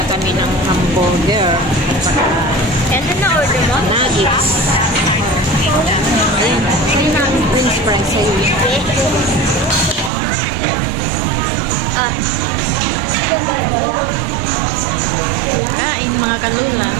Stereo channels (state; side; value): drops out; left; at 10.1 s